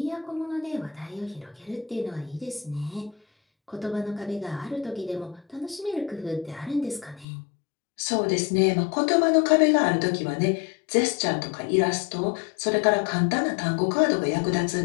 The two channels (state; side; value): drops out; right; at 7.2 s